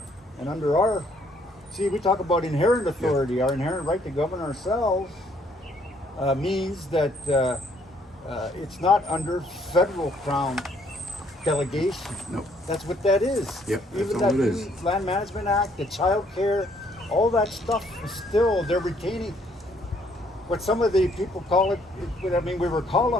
and under our, see, we talk about inherent authority. Our inherent right to govern ourselves means that it's not under federal crown delegation. No. That's what that is. Yep, that's Even all that it is. new Land Management Act, the child care, all that stuff is still, they're retaining what some of the people call it, I mean, we were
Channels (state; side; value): normal; both; correlation 0.66